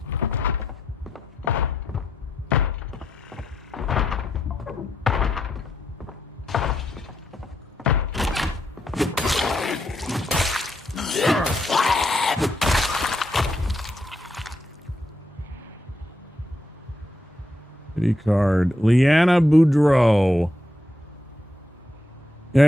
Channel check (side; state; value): both; normal; correlation 0.80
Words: card. Leanna Boudreau.